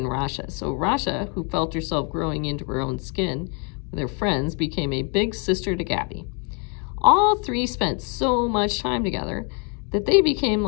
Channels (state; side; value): quieter; right; 36.5 dB